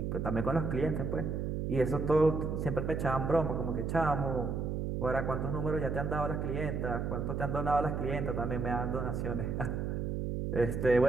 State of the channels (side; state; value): right; noise; hum, 1 dB below the sound